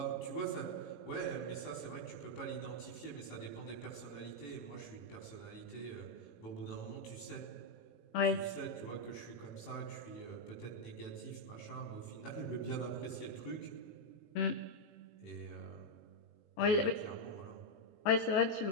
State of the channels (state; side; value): late; right; 18 ms